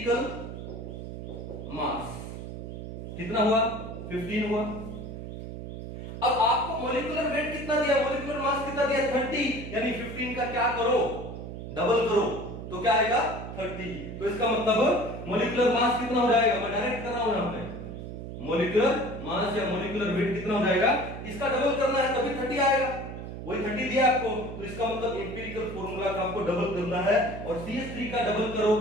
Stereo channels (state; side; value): noise; right; hum, 9 dB below the sound